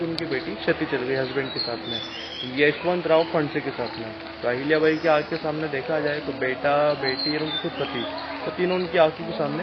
उनकी बेटी क्षति चल गई हस्बैंड के साथ में, यशवंतराव फणसे के साथ में। तो अहिल्याबाई की आग के सामने देखा जाए तो बेटा, बेटी और उनके खुद पति, तो तीनों उनकी आंखों के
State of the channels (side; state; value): both; identical; correlation 1.00